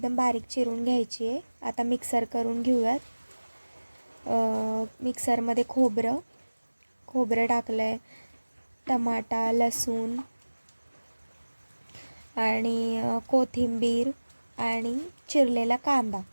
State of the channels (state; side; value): inverted; both; correlation -1.00